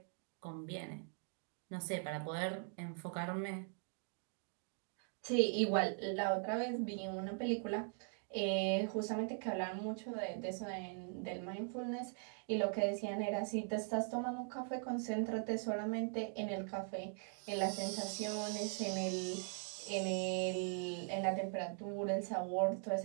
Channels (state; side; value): silent; left; 50 dB below the other